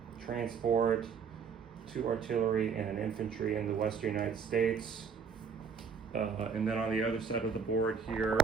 transport, 2 artillery, and an infantry in the western United States. And then on the other side of the board here,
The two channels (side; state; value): left; quieter; 6.1 dB